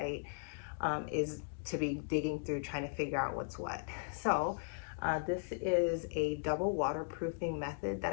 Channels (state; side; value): silent; right; digital silence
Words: is to be digging through trying to figure out what's what. So this is a double waterproofing method that